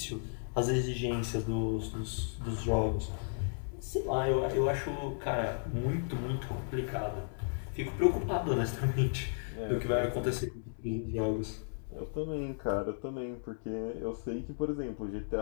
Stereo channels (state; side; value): silent; right; digital silence